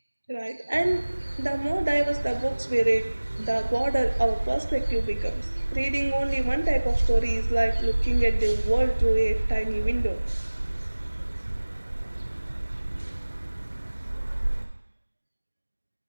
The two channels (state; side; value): inverted; both; correlation -1.00